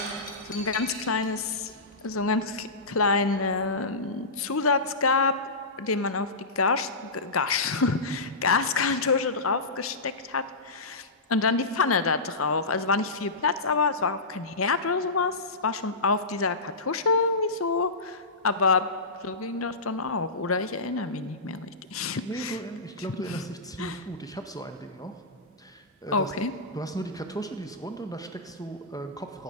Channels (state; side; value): quieter; right; 3.3 dB